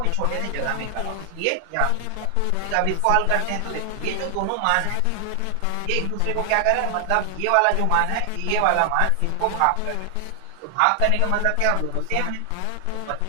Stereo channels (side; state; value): both; different; correlation 0.00